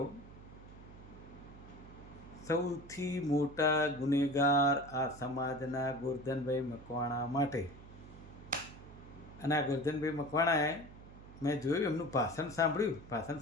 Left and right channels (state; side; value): noise; right; hum, 17 dB below the sound